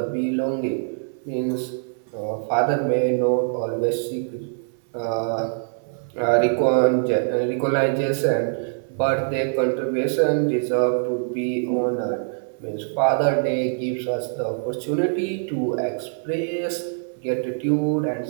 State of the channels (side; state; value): left; silent; 58 dB below the other